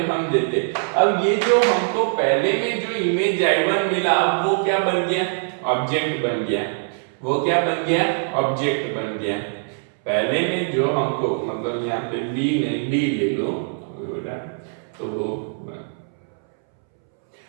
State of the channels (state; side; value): silent; left; 64 dB below the other